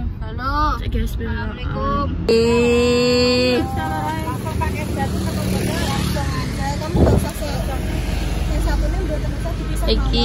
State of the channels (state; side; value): identical; both; correlation 1.00